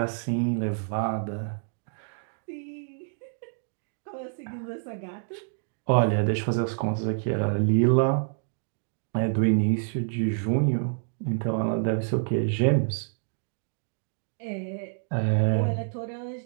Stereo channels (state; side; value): silent; left; digital silence